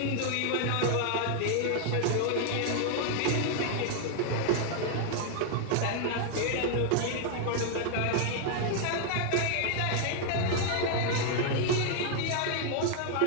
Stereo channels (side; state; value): both; different; correlation 0.00